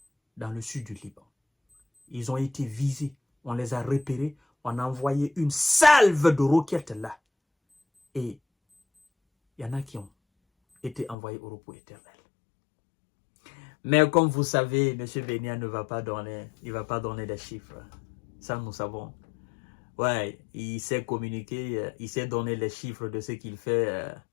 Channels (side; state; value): right; drops out; at 11.2 s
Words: dans le sud du Liban. Ils ont été visés, on les a repérés, on a envoyé une salve de roquettes là. Et il y en a qui ont été envoyés au repos éternel. Mais comme vous savez, M. Benya ne va pas donner, il va pas donner des chiffres. Ça, nous savons. Ouais, il sait communiquer, il sait donner les chiffres de ce qu'il fait